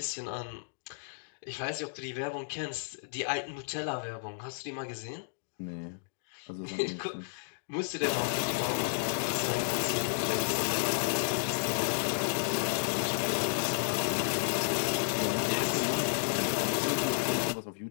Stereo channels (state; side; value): silent; right; digital silence